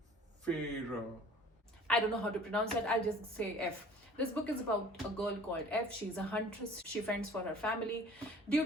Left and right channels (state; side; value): normal; both; correlation 0.48